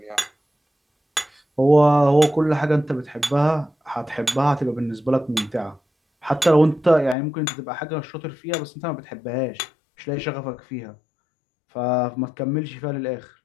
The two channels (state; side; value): drops out; right; at 7.2 s